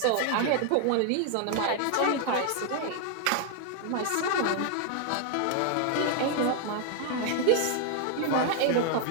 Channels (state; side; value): different; both; correlation 0.00